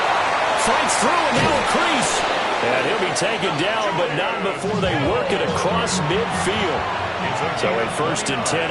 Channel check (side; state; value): both; identical; correlation 1.00